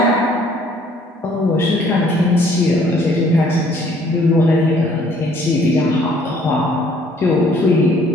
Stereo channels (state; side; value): normal; both; correlation 0.60